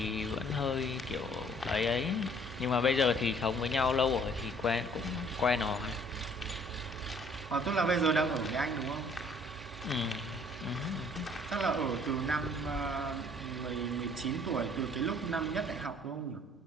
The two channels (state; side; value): normal; both; correlation 0.58